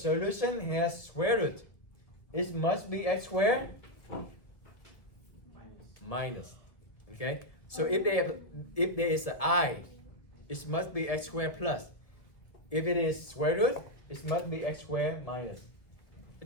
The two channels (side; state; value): right; late; 1.5 ms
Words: has square root, it must be x squared minus. Okay? So if there is an I, it must be x squared plus. If it is square root, it must be x squared minus.